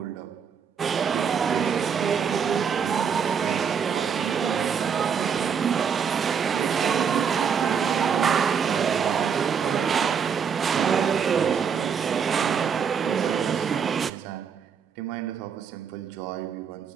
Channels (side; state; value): left; quieter; 6.9 dB